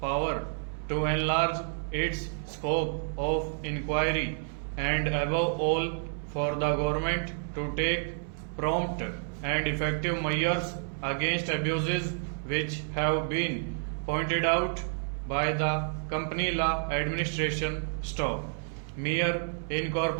to enlarge its scope of inquiry, and above all for the government to take prompt and effective measures against abuses which have been pointed out by the company law administration staff. Mere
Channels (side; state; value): left; silent; 58 dB below the other